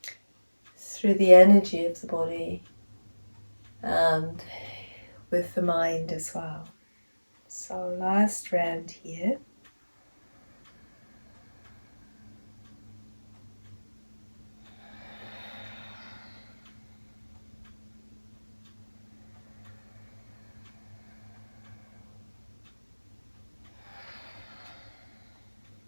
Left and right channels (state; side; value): inverted; both; correlation -1.00